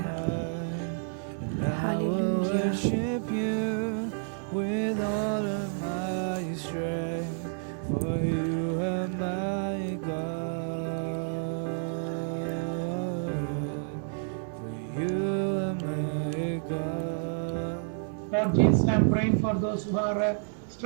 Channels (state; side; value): silent; left; digital silence